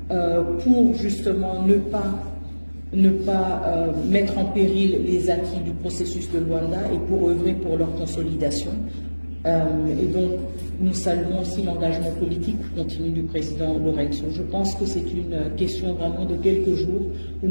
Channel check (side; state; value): both; inverted; correlation -1.00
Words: pour justement ne pas mettre en péril les acquis du processus de Luanda et pour œuvrer pour leur consolidation. Et donc, nous saluons aussi l'engagement politique continu du président Lorenzo. Je pense que c'est une question vraiment de quelques jours où